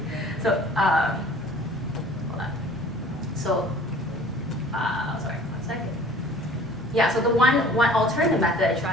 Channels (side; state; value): both; normal; correlation 0.49